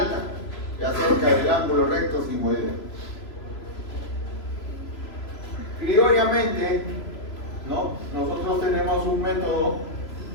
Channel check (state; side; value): late; right; 3.0 ms